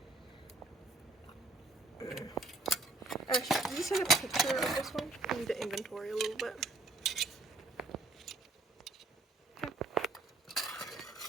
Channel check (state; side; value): quieter; left; 3.1 dB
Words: Actually, can you send a picture of this one? I need to inventory a little bit.